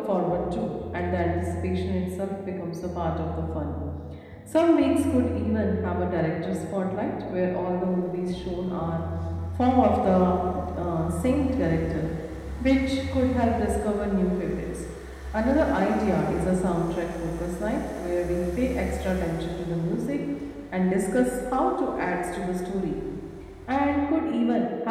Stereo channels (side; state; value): both; identical; correlation 1.00